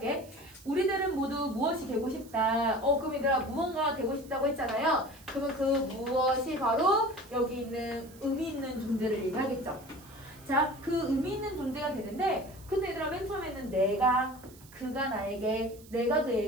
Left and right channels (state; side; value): noise; right; hiss, 23 dB below the sound